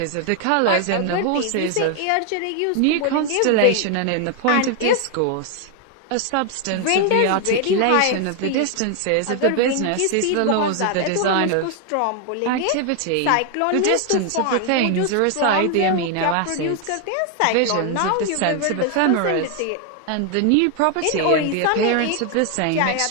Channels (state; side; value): different; both; correlation 0.00